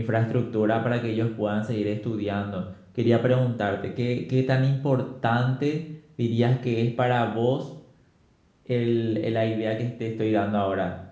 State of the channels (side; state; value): both; identical; correlation 1.00